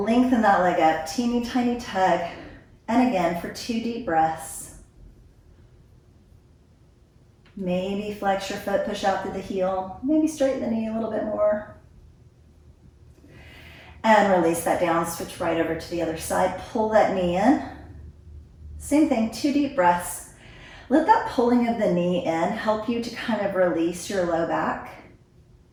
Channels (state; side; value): identical; both; correlation 1.00